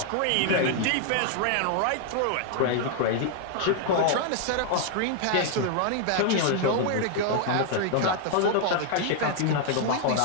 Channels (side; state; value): both; different; correlation 0.00